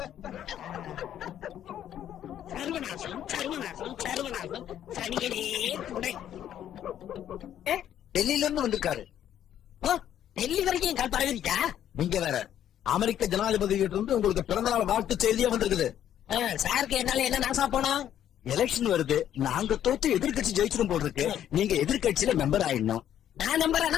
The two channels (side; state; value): right; quieter; 10.7 dB